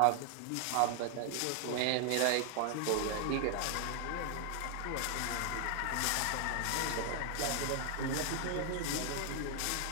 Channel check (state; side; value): different; both; correlation 0.00